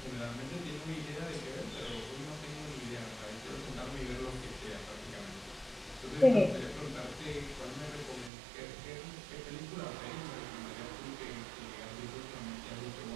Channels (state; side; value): drops out; left; at 8.3 s